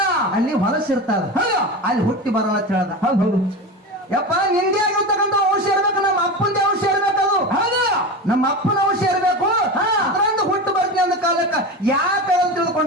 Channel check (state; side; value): normal; both; correlation 0.25